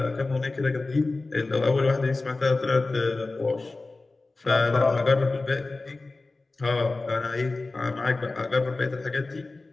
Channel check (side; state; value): right; quieter; 3.4 dB